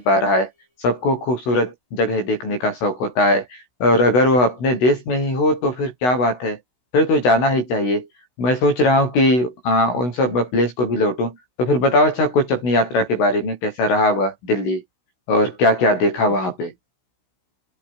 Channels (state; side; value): late; right; 16 ms